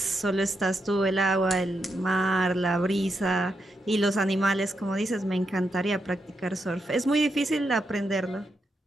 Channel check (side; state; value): both; normal; correlation 0.83